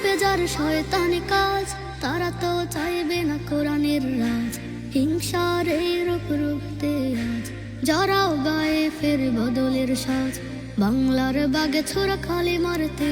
যার শয়তানি কাজ, তারা তো চাইবে না কোরআনের রাজ। হিংসার এই রূপ রুখতে আজ জড়াও গায়ে ফের বদলের সাজ। বাংলার বাগে ছোড়া খালি মারতে,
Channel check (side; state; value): both; identical; correlation 1.00